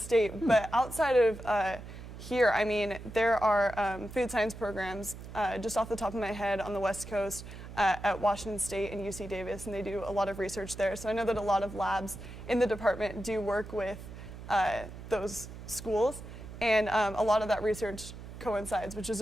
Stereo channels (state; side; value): noise; right; hum, 12 dB below the sound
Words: but outside of here, I mean, there are food science programs just off the top of my head on the West Coast at Washington State and UC Davis, and they do a lot of research there. So I know that a lot of labs in the department do work with those schools, and a lot of that research coincides, which